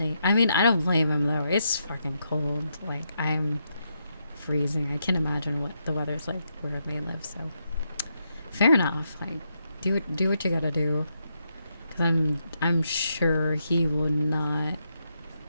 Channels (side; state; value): both; inverted; correlation -0.81